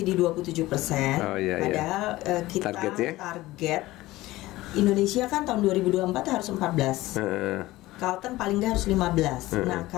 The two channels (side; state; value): right; quieter; 17.8 dB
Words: di 27%. Padahal kita target Indonesia kan tahun 2024 harus 14. Carlton paling nggak harus 15. Nah